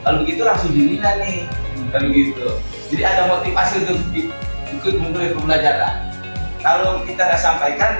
kalau begitu langsung dinilai nih, kalau gitu. Jadi ada motivasi untuk ikut memulai pembelajaran. Kalau kita nggak sampaikan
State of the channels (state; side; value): inverted; both; correlation -1.00